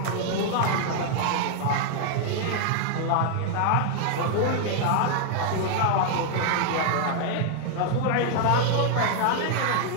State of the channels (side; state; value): both; different; correlation 0.00